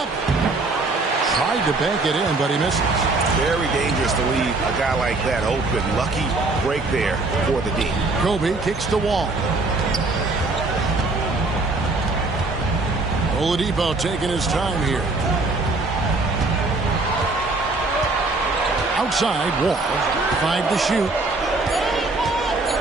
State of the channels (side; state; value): left; quieter; 3.3 dB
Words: Tried to bank it in, but he misses. Very dangerous to leave a guy like that open. Lucky break there for the D. Kobe kicks the wall. Oladipo taking his time here. Outside, Wall. 5 to shoot.